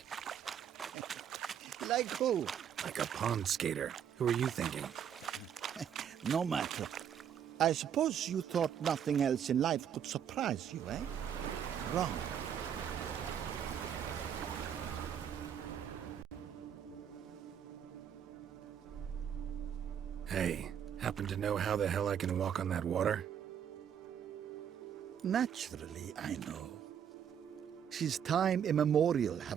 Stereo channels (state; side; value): quieter; left; 8.7 dB